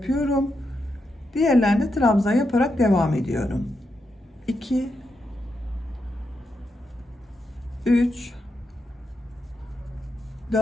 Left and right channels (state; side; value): normal; both; correlation 0.84